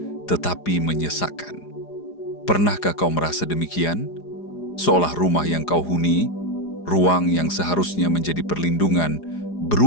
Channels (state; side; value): late; right; 4.9 ms